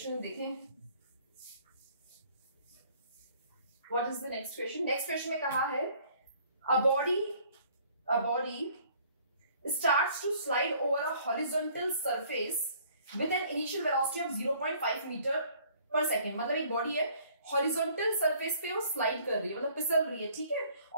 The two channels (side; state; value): both; inverted; correlation -0.58